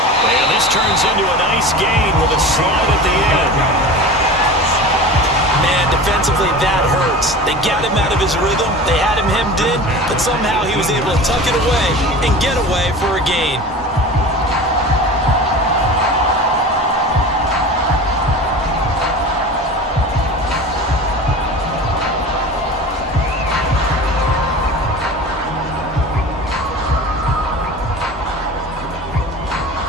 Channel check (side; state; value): both; normal; correlation 0.35